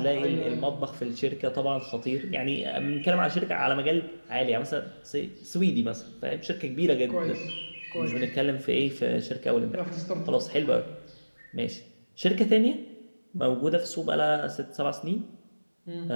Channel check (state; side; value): inverted; both; correlation -1.00